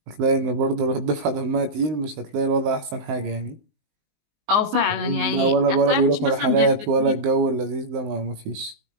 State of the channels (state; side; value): late; left; 19 ms